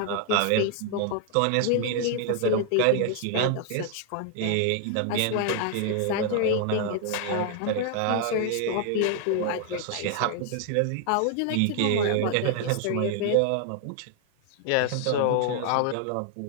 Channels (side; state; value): both; different; correlation 0.00